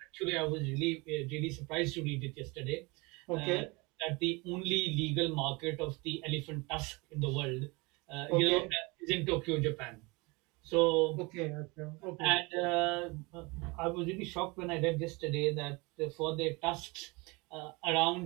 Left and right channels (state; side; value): quieter; left; 26.2 dB